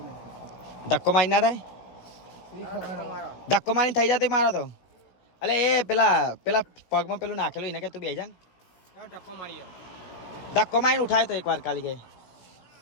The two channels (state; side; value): late; right; 17 ms